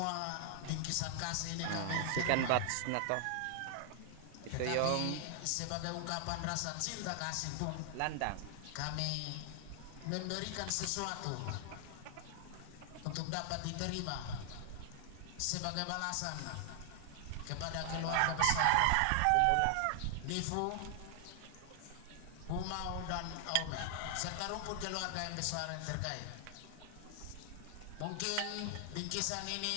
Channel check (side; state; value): both; different; correlation 0.00